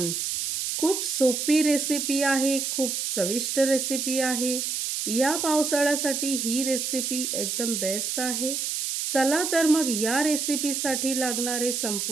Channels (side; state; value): right; noise; hiss, 2 dB below the sound